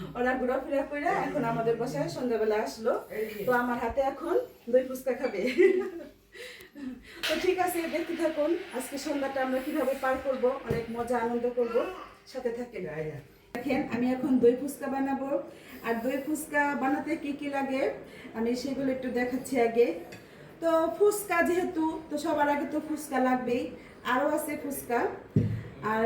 ওরা ঘোরাফেরা করে এখন আমাদের বাসায় সন্ধ্যাবেলা আসলো। তো আমার হাতে এখন দই ফুচকা খাবে। তো ঠিক আছে, দেখতে থাকুন আজকে সন্ধ্যাটা আমরা কিভাবে পার করব, অনেক মজা আনন্দ করব, সাথে থাকেন। দেখেন আমি এখন দই ফুচকা বানাবো। আর দই ফুচকা বানাতে কি কি লাগে আমি সেগুলো একটু দেখাচ্ছি আগে। তো ফুচকা যেহেতু, তো সবার আগে তো ফুচকা লাগবেই, আরও আছে ফুচকা। আর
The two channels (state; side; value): identical; both; correlation 1.00